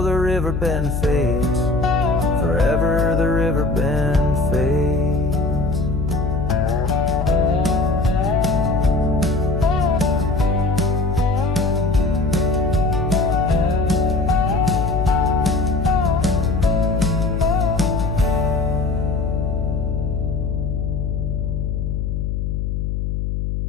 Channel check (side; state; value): left; noise; hum, 1 dB below the sound